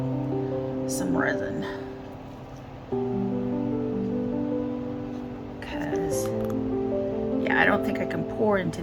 some resin. Because yeah, I don't think I can pour into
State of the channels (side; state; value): both; identical; correlation 1.00